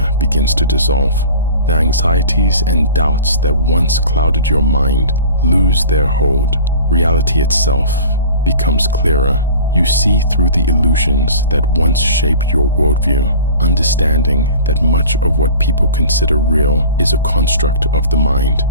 begins to dissolve. The anxieties and doubts that once clouded your mind lose their hold. Reality itself becomes clearer. You see through the illusions that once shaped your worldview, understanding that much of what people consider real is a construct of the mind.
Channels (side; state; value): both; inverted; correlation -0.41